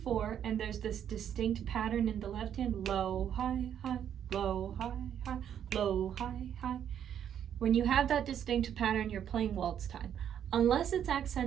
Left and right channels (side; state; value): left; quieter; 9.4 dB